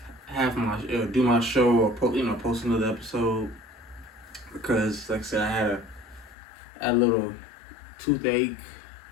have my do my show or post another episode because, like I said, I had a little toothache,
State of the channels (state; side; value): drops out; right; at 6.4 s